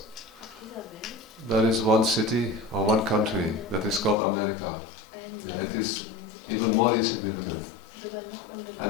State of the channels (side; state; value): right; drops out; at 4.2 s